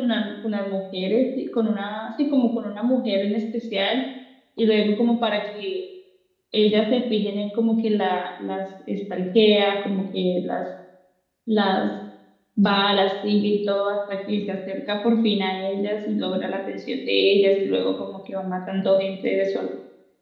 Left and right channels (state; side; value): identical; both; correlation 1.00